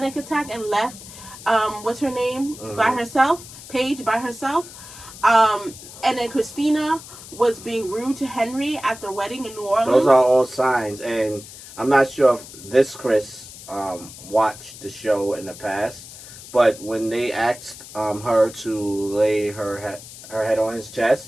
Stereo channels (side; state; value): left; noise; hiss, 16 dB below the sound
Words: attack and left. What's her name? By herself. Paige by herself. And then Christina was being rude to Henry at their wedding in New Orleans. Those are all signs, and I'm not sure if this Chris watched the show in the past, but when they asked her to lay her head on his chest,